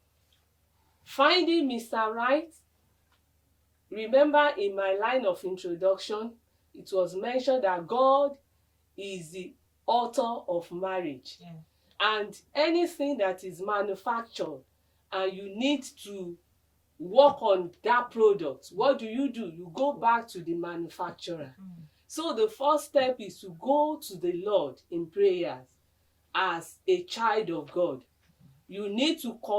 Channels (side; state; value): both; identical; correlation 1.00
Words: Finding Mr. Right, remember in my line of introduction, it was mentioned that God is the author of marriage. Yeah. And anything that is manufactured and you need to work on that product, what do? You go back to the manufacturer. So the first step is to go to the Lord in prayers as a child of God. You need to